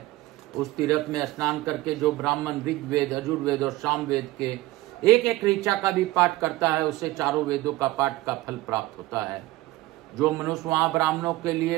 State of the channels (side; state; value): left; quieter; 18.1 dB